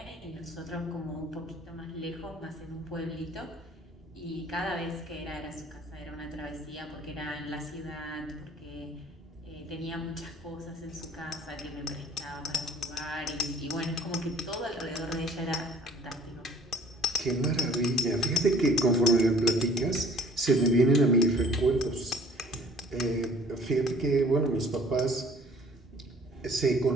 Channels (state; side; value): normal; both; correlation 0.51